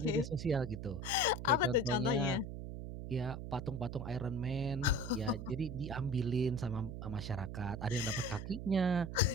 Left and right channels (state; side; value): noise; right; hum, 7 dB below the sound